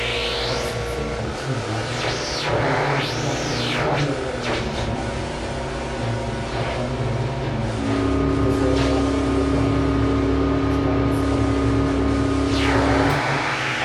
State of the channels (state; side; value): identical; both; correlation 1.00